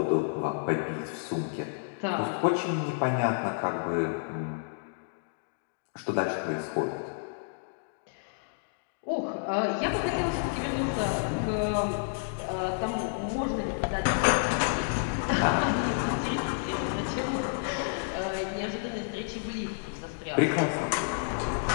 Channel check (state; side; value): silent; right; digital silence